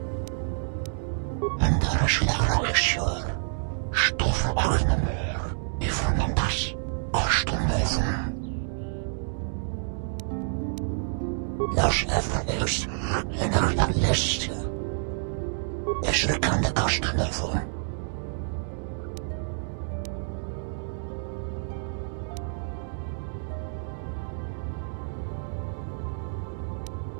En daar is de reacteur. Stoffen agnemer. Even das. Kostenleven. Los Evanius en la liste. Is er kan de kostenleven.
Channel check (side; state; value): left; silent; digital silence